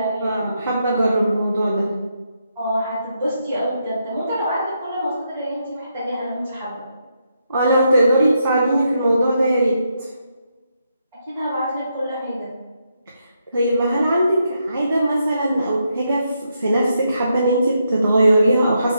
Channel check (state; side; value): inverted; both; correlation -0.80